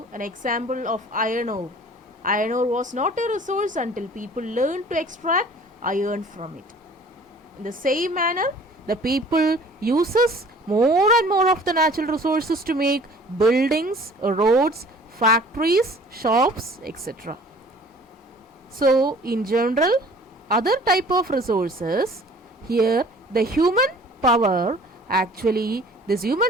an example of iron ore. Iron ore was not a resource until people learned to extract iron from it. In the same manner, the people uses more and more of the natural resources to make buildings, roads, factories, shops, etc. So, in general, other type of resources, here the human power, actually these human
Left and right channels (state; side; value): normal; both; correlation 0.50